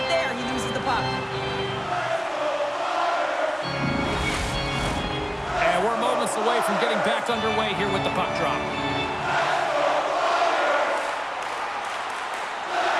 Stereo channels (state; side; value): identical; both; correlation 1.00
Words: there, he loses the puck. And we're moments away from getting back underway here with the puck drop.